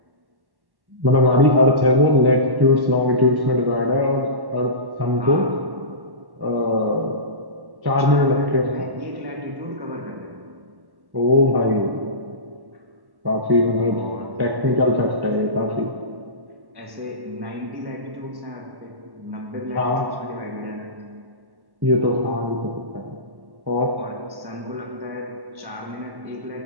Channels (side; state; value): left; late; 1.1 ms